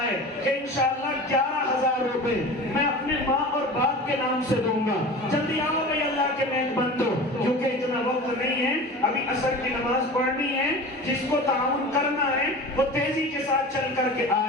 کہ انشاءاللہ 11,000 روپے میں اپنے ماں اور باپ کے نام سے دوں گا. جلدی آؤ بھائی اللہ کے نیک بندو, کیونکہ اتنا وقت نہیں ہے, ابھی عصر کی نماز پڑھنی ہے. جس کو تعاون کرنا ہے وہ تیزی کے ساتھ چل کر کے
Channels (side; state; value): both; normal; correlation 0.35